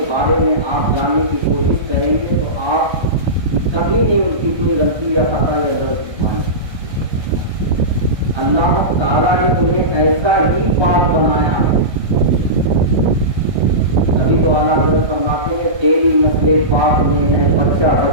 بارے میں آپ جاننے کی کوشش کریں گے، تو آپ کبھی نہیں ان کی کوئی غلطی یا خطا یا غلط پائیں گے۔ اللہ تعالیٰ نے انہیں ایسا ہی پاک بنایا ہے۔ ابھی تو اعلیٰ حضرت فرماتے ہیں تیری نسل پاک میں ہے بچہ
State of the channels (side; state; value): left; late; 1.3 ms